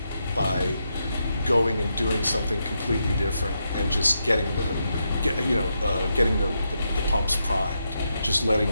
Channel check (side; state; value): both; inverted; correlation -0.83